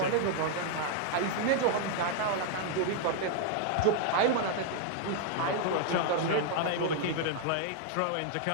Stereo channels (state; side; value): different; both; correlation 0.00